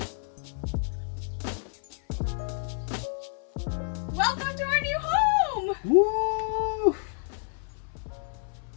Welcome to our new home! Woo!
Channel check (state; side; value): silent; right; 58 dB below the other